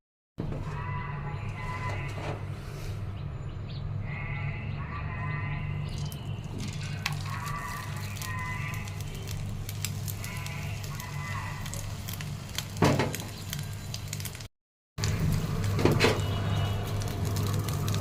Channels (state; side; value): identical; both; correlation 1.00